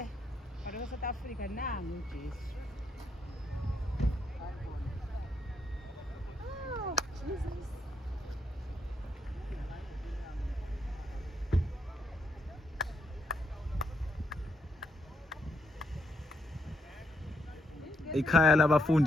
Kodwa South Africa nangu uJesu. Jesus. Ikhaya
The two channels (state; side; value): normal; both; correlation 0.77